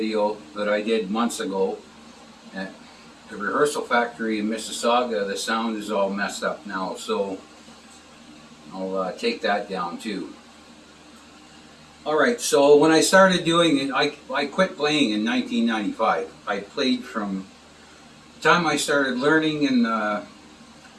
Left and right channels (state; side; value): identical; both; correlation 1.00